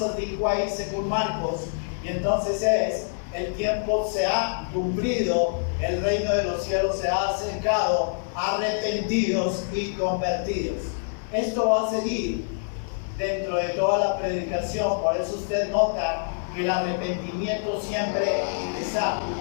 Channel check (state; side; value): silent; right; 61 dB below the other